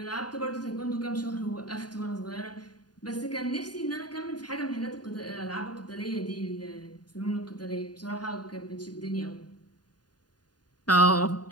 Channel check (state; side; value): late; right; 0.70 ms